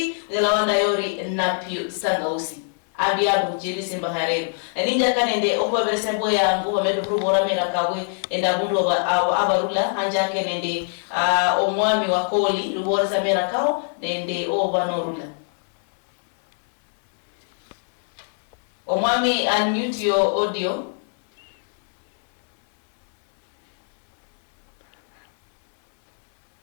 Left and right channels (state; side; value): silent; right; 62 dB below the other